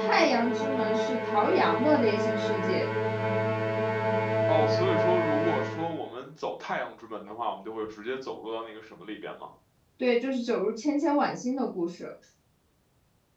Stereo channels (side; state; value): both; identical; correlation 1.00